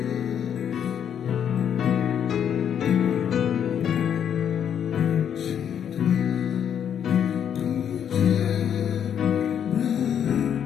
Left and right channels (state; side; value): quieter; right; 8.8 dB